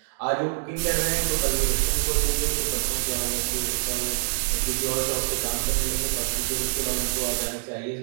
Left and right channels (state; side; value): silent; left; digital silence